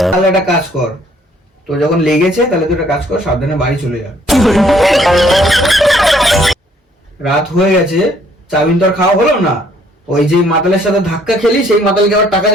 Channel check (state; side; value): normal; both; correlation 0.63